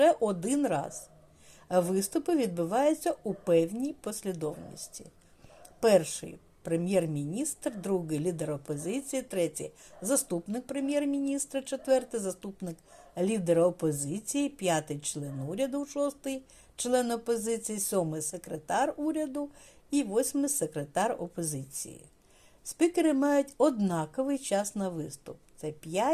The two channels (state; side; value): identical; both; correlation 1.00